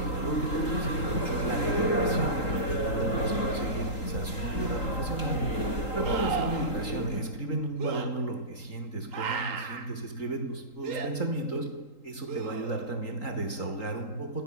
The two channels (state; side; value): late; right; 3.8 ms